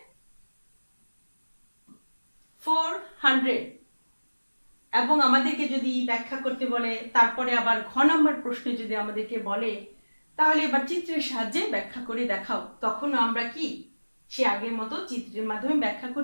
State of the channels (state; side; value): inverted; both; correlation -1.00